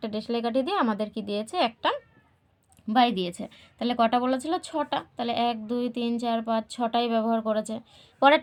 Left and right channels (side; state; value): both; identical; correlation 1.00